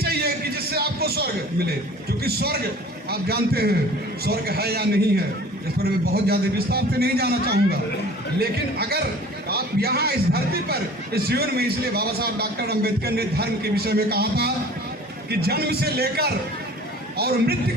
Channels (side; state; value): both; normal; correlation 0.45